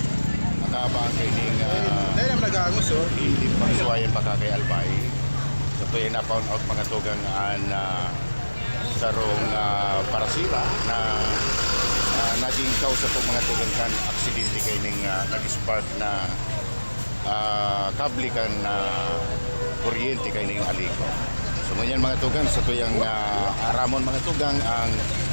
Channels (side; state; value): both; inverted; correlation -1.00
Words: nakabang kining Dahil naman nag-aangos, oh. hindi pagsuwayan pagkakayalbay so ito yung na-found out mga tugang an sarong parasira na naging kausa po mga tugang kan aksidente kining nag-spark na kable kan kuryente kining aliko. So ngunyan mga tugang sa tuyang aramon mga tugang ang